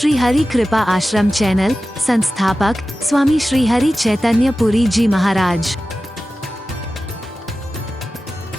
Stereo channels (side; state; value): both; normal; correlation 0.94